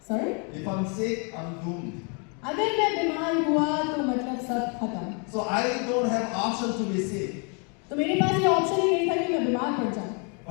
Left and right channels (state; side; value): quieter; right; 36.6 dB